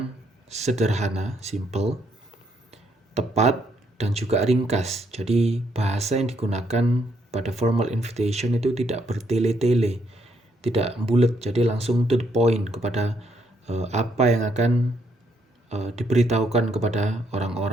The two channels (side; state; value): both; normal; correlation 0.73